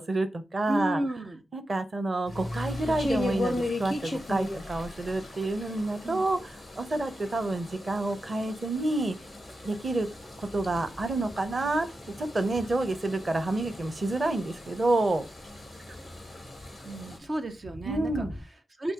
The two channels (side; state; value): both; normal; correlation 0.90